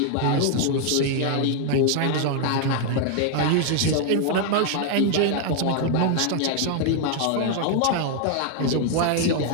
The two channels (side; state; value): both; different; correlation 0.00